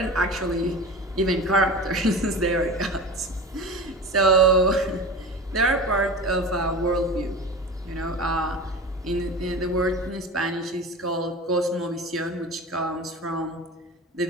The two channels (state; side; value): normal; both; correlation 0.32